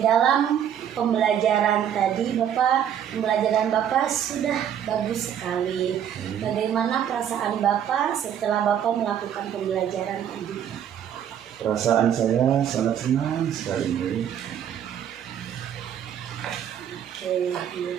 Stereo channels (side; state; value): left; quieter; 9.4 dB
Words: dalam pembelajaran tadi, pembelajaran Bapak sudah bagus sekali. Bagaimana perasaan Bapak setelah Bapak melakukan pembelajaran tadi? Perasaan saya sangat senang sekali. Oke, iya,